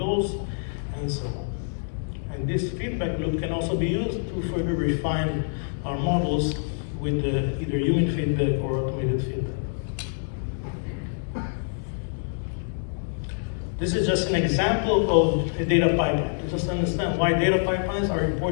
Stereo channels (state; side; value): silent; right; digital silence